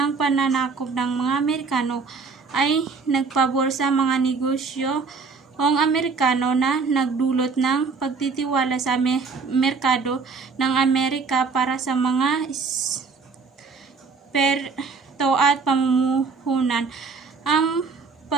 pananakop ng mga Amerikano ay nagpabor sa mga negosyo ang Amerikano na nagdulot ng pagtitiwala sa merkado ng Amerika para sa mga perto at pamumuhunan. Ang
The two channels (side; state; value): left; quieter; 4.8 dB